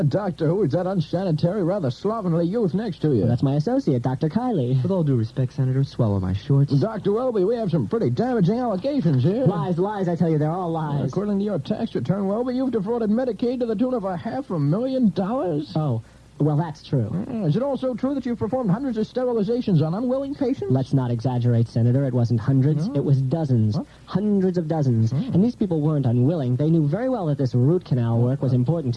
Doctor, who is that unsanitary, rather slovenly youth next to you? Well, that's my associate, Dr. Kiley. With all due respect, Senator, swallow my shorts. Dr. Welby, we have some pretty damaging allegations here. Lies, I tell you, they're all lies. According to your tax return, Welby, you've defrauded Medicaid to the tune of $500,000. Oh. Well, that's true. Is it also true that you've performed hundreds of sterilizations on unwilling patients? Let's not exaggerate, Senator. It wasn't hundreds. It was dozens. What? Hundreds of dozens. And these people weren't unwilling. They knew very well that this root canal work was important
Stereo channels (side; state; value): both; identical; correlation 1.00